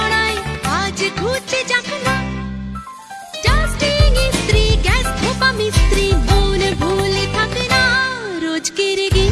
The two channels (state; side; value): identical; both; correlation 1.00